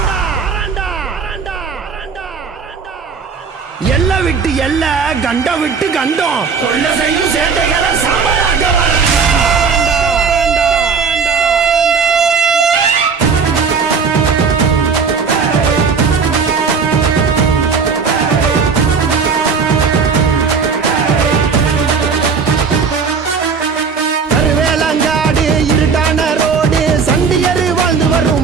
எல்ல விட்டு எல்ல கண்ட விட்டு கண்டம் தொல்ல செய்யும் சேட்டைகளை சாம்பலாக்க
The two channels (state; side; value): quieter; left; 5.5 dB